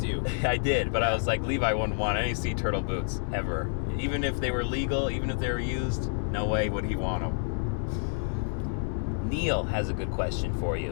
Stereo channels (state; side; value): silent; right; 59 dB below the other